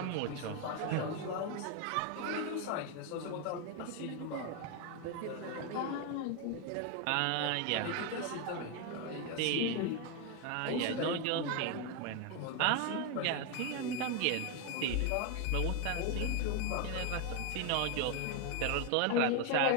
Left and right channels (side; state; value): both; different; correlation 0.01